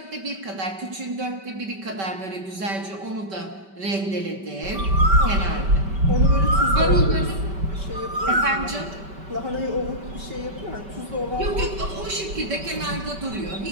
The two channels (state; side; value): late; left; 5.2 ms